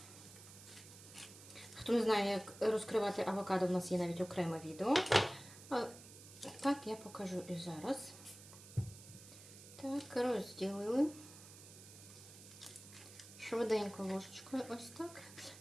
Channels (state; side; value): noise; right; hiss, 17 dB below the sound